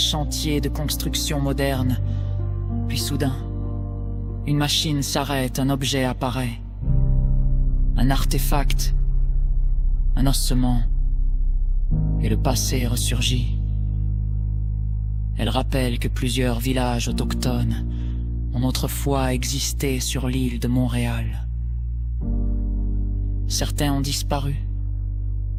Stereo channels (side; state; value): both; identical; correlation 1.00